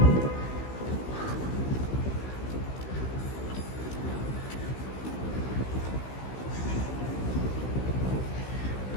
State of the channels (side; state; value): right; late; 16 ms